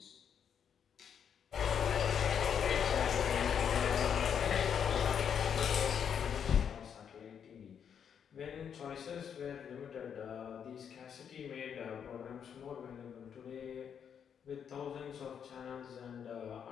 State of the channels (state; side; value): quieter; right; 7.9 dB